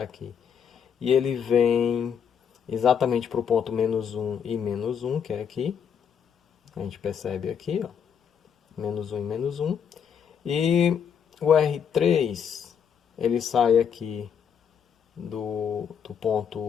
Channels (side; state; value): right; quieter; 7.6 dB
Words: E ele vem exatamente para o ponto menos 1 e menos 1, que é aqui. A gente percebe aqui, ó, menos 1 e menos 1. E o R3, ele sai aqui do